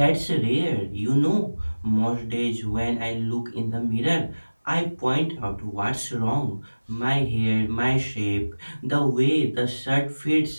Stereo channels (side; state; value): both; inverted; correlation -1.00